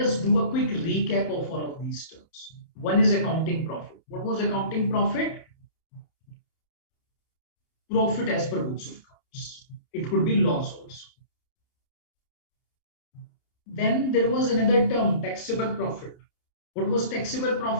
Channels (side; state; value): right; late; 30 ms